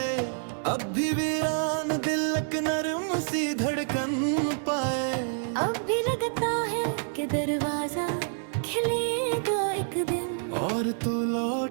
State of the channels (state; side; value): silent; left; digital silence